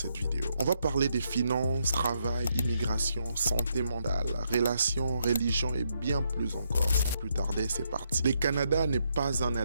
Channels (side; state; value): both; inverted; correlation -0.77